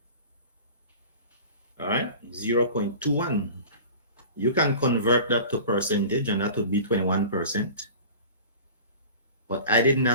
All right, 0.21. You can convert that to percentage, and that would be 21%. But I didn't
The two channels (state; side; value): inverted; both; correlation -0.40